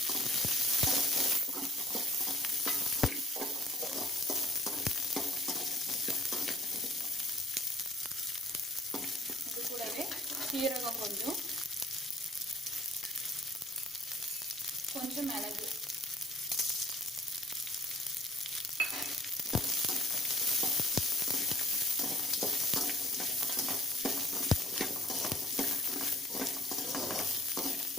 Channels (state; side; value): normal; both; correlation 0.59